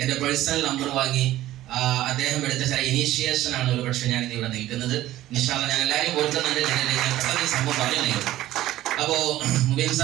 എന്റെ പേഴ്സണൽ നമ്പർ വാങ്ങി അദ്ദേഹം എടുത്ത ചില ഇനീഷ്യേഷൻ ആണ് ഒരു പക്ഷെ ഞാൻ ഇവിടെ നിൽക്കുന്നത്. ഇൻഷാ അല്ലാഹ് ഞാൻ എല്ലാവരും ഓർക്കുന്നുണ്ട്. ഞാൻ പെട്ടെന്ന് ഈ സംഭവം പറഞ്ഞു. അപ്പോ മുബീൻ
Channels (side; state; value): left; quieter; 14.8 dB